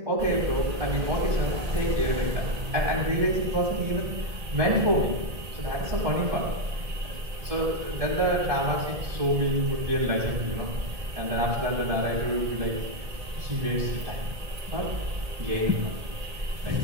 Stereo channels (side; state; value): left; late; 1.8 ms